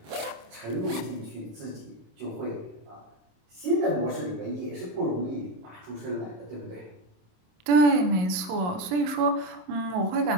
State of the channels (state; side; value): late; left; 27 ms